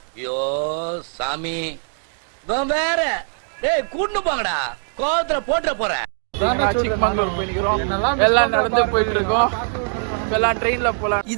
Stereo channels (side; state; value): left; silent; 57 dB below the other